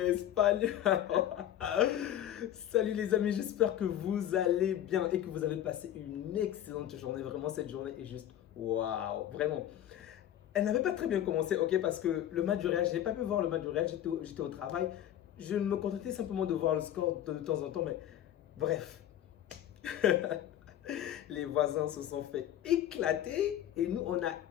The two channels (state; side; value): quieter; right; 11.6 dB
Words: Salut les amis, j'espère que vous allez bien et que vous avez passé une excellente journée. Vraiment, cette journée est juste waouh, vraiment. Elle n'avait pas très bien commencé, ok, parce que le match du Real, je n'ai pas pu voir le match du Real, j'étais au travail. Je me contentais simplement de voir le score de temps en temps, mais bref. Les voisins se sont fait éclater et nous, on a